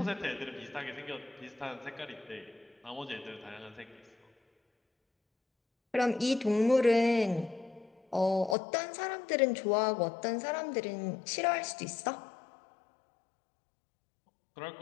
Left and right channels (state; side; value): drops out; right; at 8.6 s